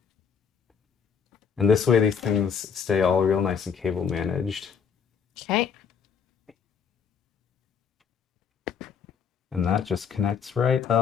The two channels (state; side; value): quieter; right; 6.8 dB